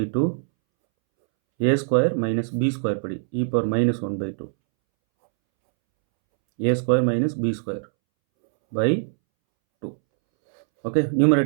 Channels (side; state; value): left; silent; 64 dB below the other